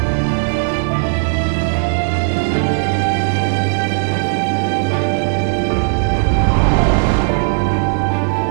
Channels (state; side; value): silent; left; digital silence